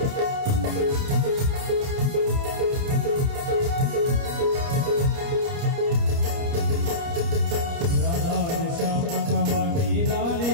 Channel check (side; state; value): left; late; 29 ms